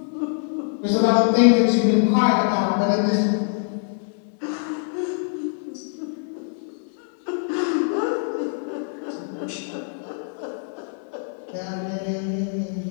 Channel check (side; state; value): right; silent; digital silence